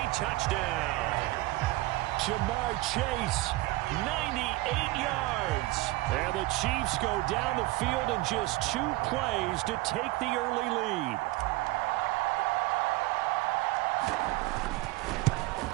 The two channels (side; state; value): left; quieter; 19.6 dB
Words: touchdown. Jamar Chase, 98 yards. And the Chiefs go down the field in just 2 plays to take the early lead.